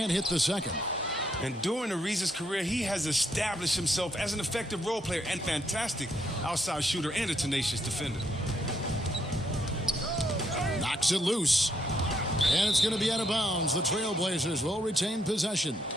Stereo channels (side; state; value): both; normal; correlation 0.74